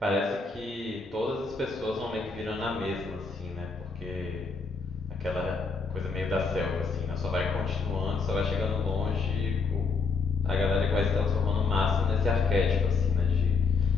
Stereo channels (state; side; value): quieter; right; 4.7 dB